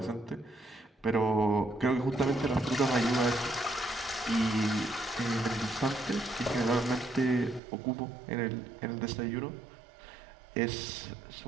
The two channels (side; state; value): left; drops out; at 7.6 s